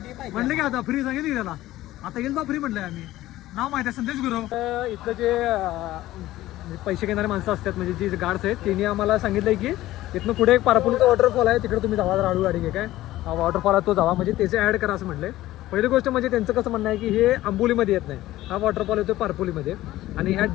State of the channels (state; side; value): quieter; right; 15.7 dB